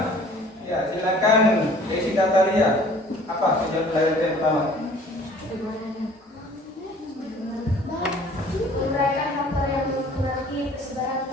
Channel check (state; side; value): normal; both; correlation 0.51